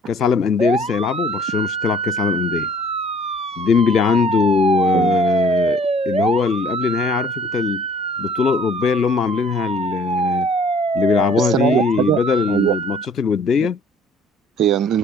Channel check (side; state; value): both; normal; correlation 0.55